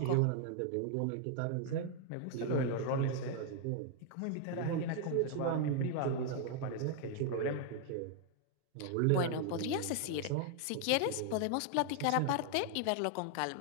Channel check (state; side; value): different; both; correlation 0.00